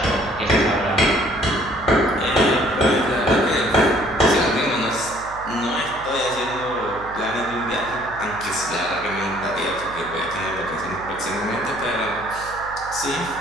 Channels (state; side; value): noise; right; hum, 17 dB below the sound